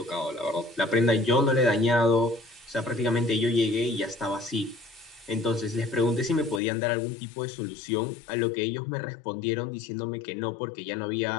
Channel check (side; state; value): right; drops out; at 6.6 s